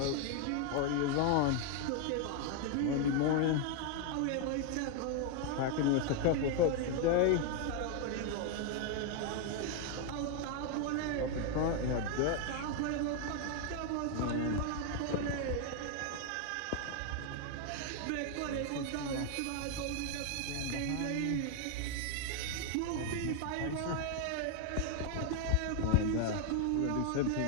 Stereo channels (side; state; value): both; different; correlation 0.01